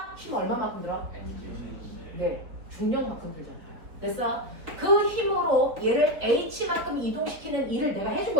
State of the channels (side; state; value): left; late; 4.0 ms